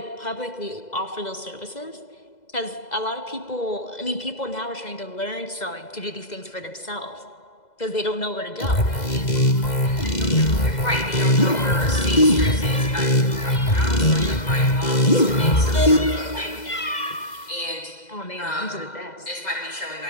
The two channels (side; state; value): right; late; 2.0 ms